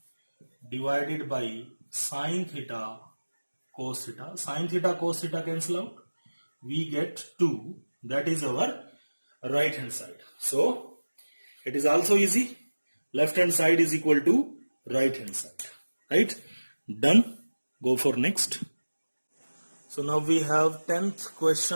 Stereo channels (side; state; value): both; inverted; correlation -1.00